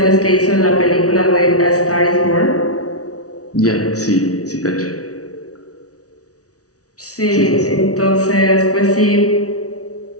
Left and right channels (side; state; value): right; late; 0.67 ms